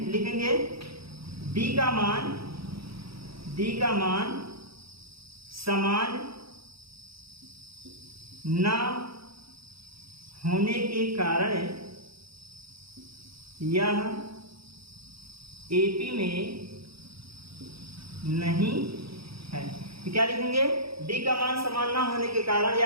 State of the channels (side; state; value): left; late; 0.76 ms